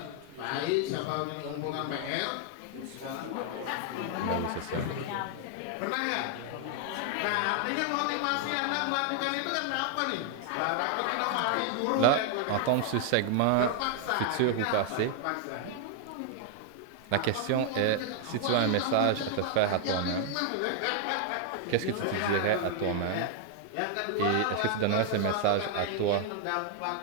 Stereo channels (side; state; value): both; different; correlation 0.00